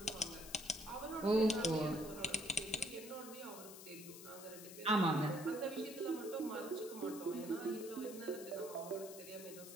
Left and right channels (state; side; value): noise; left; hiss, 13 dB below the sound